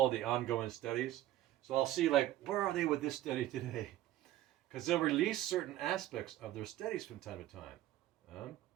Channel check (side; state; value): left; quieter; 14.1 dB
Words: the ongoing studies. So I'll see, like, where are they with this study today? Because they'll release certain aspects of their studies from time to time.